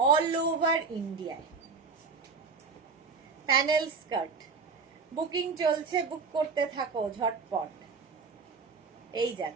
অল ওভার ইন্ডিয়ায়। প্যানেল স্কার্ট বুকিং চলছে, বুক করতে থাকো ঝটপট। এই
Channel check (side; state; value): left; quieter; 4.9 dB